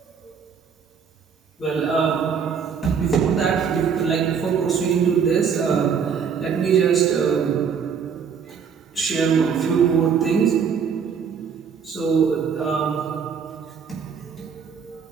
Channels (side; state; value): left; quieter; 6.7 dB